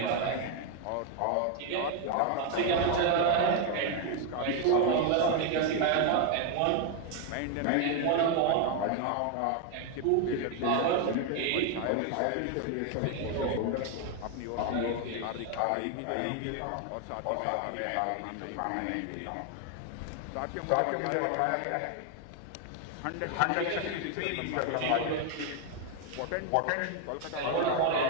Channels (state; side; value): different; both; correlation 0.01